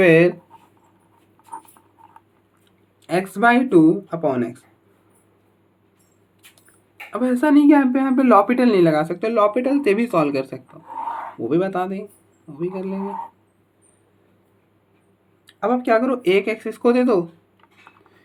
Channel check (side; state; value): both; identical; correlation 1.00